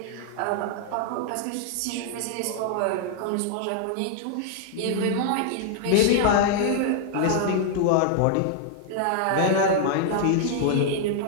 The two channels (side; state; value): both; different; correlation -0.01